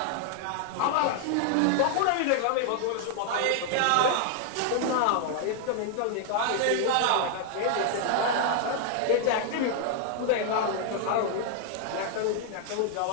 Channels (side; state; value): both; different; correlation 0.00